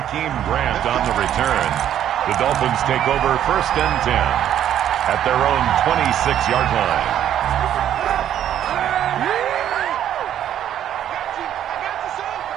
Grant on the return. The Dolphins take over 1st and 10 at their own 26-yard line.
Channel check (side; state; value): left; quieter; 10.7 dB